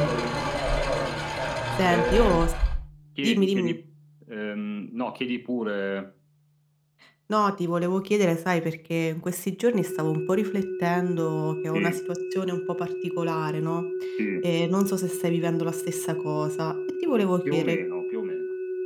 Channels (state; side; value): identical; both; correlation 1.00